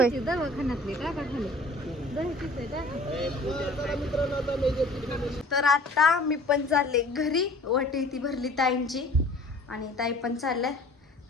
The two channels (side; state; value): both; normal; correlation 0.48